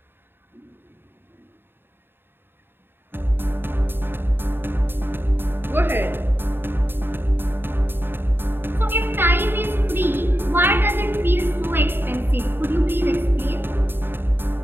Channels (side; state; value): left; late; 0.10 ms